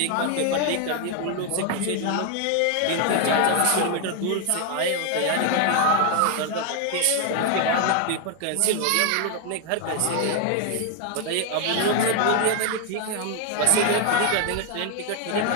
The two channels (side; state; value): both; different; correlation 0.01